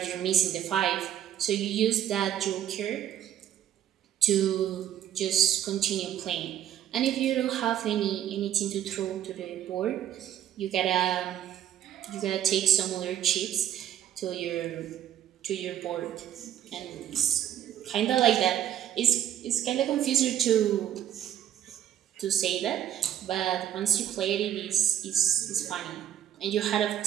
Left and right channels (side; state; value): left; quieter; 10.9 dB